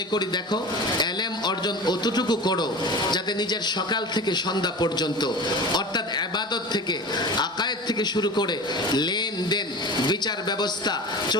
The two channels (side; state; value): both; normal; correlation 0.33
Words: করি দেখো, এলেম অর্জন অতটুকু করো যাতে নিজের সকাল থেকে সন্ধ্যা পর্যন্ত, অর্থাৎ ইবাদত থেকে, আকায়েদ থেকে শুরু করে লেনদেন, বিচার ব্যবস্থা,